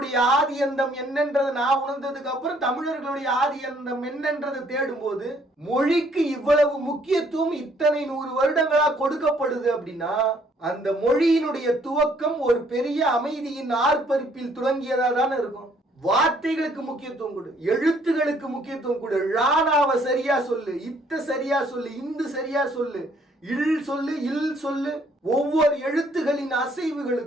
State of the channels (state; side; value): normal; both; correlation 0.64